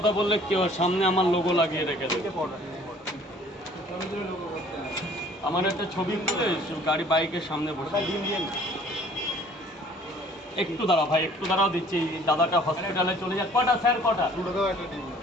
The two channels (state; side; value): normal; both; correlation 0.54